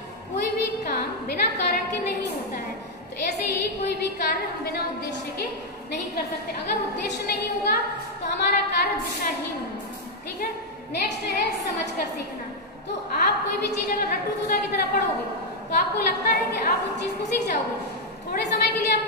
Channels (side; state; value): both; normal; correlation 0.00